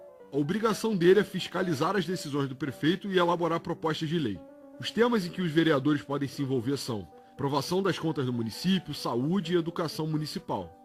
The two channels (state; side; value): identical; both; correlation 1.00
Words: A obrigação dele é fiscalizar as decisões do prefeito e elaborar propostas de lei. Os temas em que os vereadores podem se envolver são aprovação das contas do município, saúde e educação municipal,